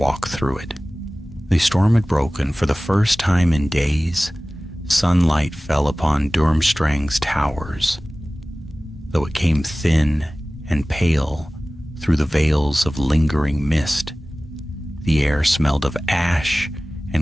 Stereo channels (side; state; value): both; normal; correlation 0.98